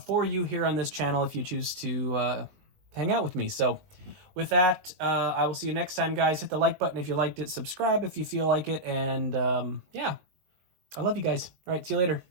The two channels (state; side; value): late; left; 20 ms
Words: for you here on this channel if you choose to hang out with me. So with that, I will see you next time, guys. Hit the like button if you liked it, subscribe if you feel like it, and yeah, I love you guys. All right, see you later.